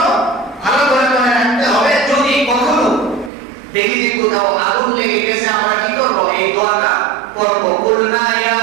ভালো করে মনে রাখতে হবে, যদি কখনো দেখি যে কোথাও আগুন লেগে গেছে আমরা কি করব? এই দোয়াটা করব, কুলনা ইয়া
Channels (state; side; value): drops out; left; at 3.3 s